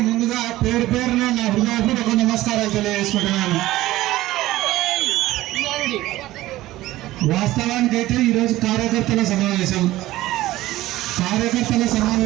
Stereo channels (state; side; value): quieter; left; 16.4 dB